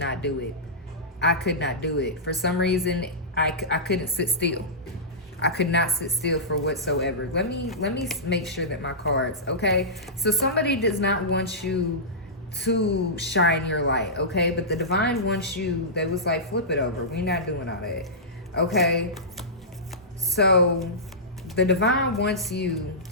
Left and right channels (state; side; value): normal; both; correlation -0.16